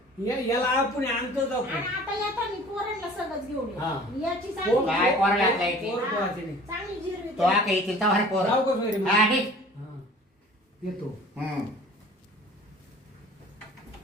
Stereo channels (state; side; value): normal; both; correlation 0.47